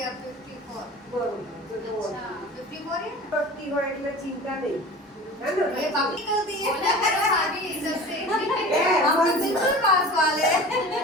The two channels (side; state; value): both; normal; correlation 0.38